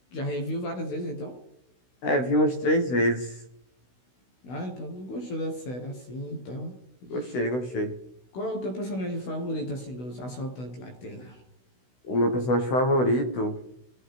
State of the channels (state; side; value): late; right; 16 ms